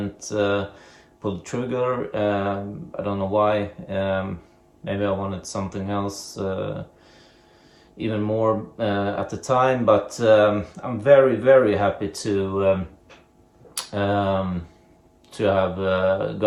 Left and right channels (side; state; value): both; identical; correlation 1.00